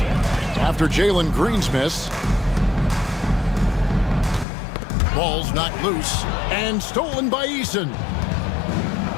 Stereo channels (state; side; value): drops out; right; at 4.5 s